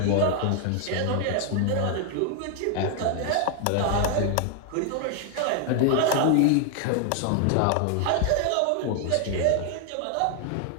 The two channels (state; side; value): different; both; correlation 0.00